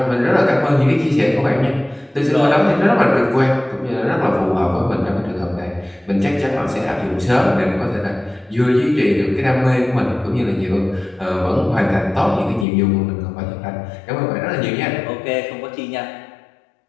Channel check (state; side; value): drops out; right; at 12.7 s